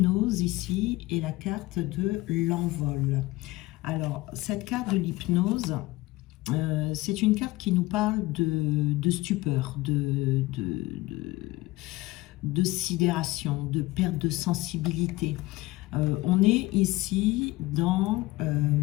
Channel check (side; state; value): right; quieter; 19.4 dB